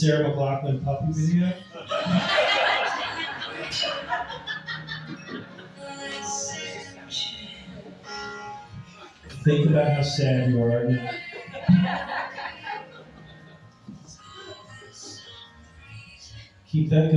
McLachlan puppy video. Think about how sad you are now. Keep that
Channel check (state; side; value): identical; both; correlation 1.00